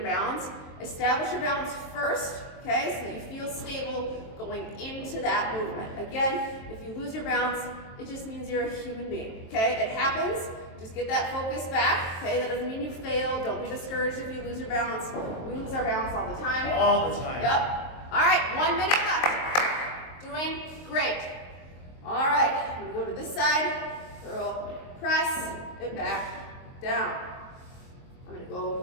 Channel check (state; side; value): late; right; 23 ms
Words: balance. Establish your balance first, okay, so that you feel stable going into that movement. Again, if you lose your balance, it just means you're a human being, okay? It happens. Just get that focus back, okay? That doesn't mean you failed. Don't be discouraged if you lose your balance. We lose our balance all the time. All the time. Yep. All right, 1 minute left. Doing great. All right, we go to this. this side, curl, press, and back, down. I'm gonna